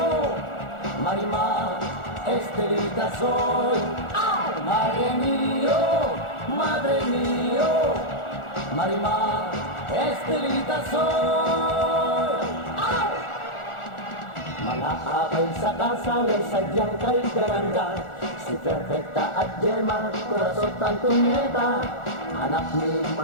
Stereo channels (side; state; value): right; late; 1.4 ms